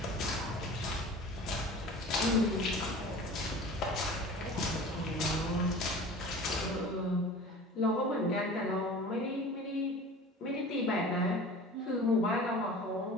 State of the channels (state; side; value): normal; both; correlation 0.40